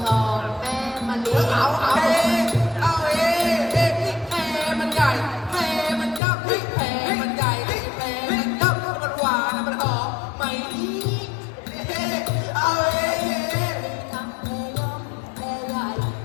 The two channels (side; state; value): right; drops out; at 6.2 s